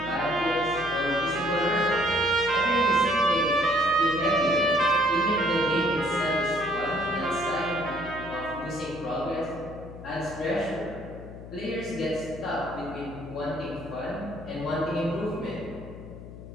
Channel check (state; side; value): noise; left; hum, 14 dB below the sound